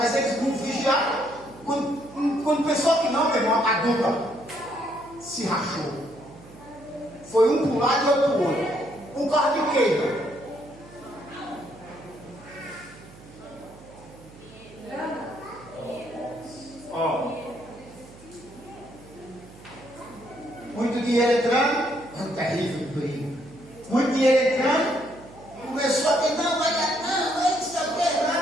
eles não vigiaram. Quando pensou que não, meu irmão, a dupla se rachou. Foi um para um lado e outro para o outro. Um carro de queima. Ó. Muito dinheiro entrando, é um terrível perigo. Muito dinheiro entrando, começou a dizer, não, vai dar, não sei o que,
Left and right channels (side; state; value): right; noise; hum, 21 dB below the sound